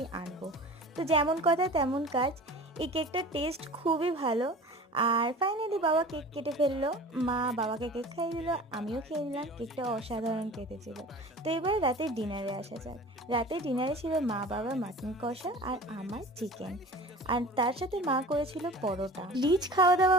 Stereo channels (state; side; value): normal; both; correlation 0.39